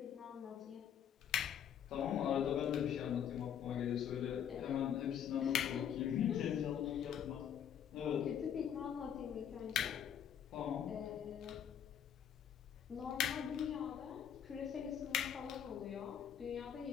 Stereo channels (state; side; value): quieter; right; 9.0 dB